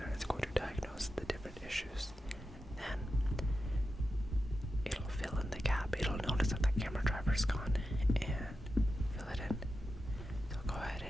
it's going to diagnose the different issues. Then it'll fill in the gap. It'll notice that the camera driver's gone and fill it in. So go ahead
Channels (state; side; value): normal; both; correlation 0.90